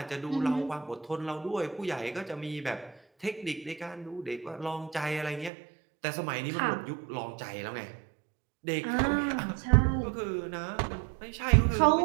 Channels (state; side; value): drops out; left; at 5.5 s